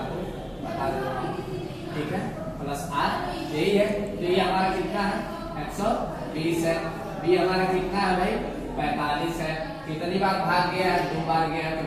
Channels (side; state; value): both; identical; correlation 1.00